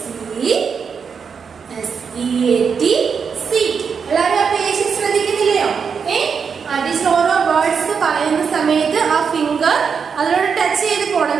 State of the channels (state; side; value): quieter; left; 6.2 dB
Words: S-E-A-T, seat. എല്ലാവരും ആ പേജ് ശ്രദ്ധിക്കുന്നില്ലയോ? ടീച്ചർ ഓരോ വേർഡ്സ് പറയുന്ന സമയത്ത് ആ ഫിംഗർ അതിനോട് ടച്ച് ചെയ്ത് പോകണം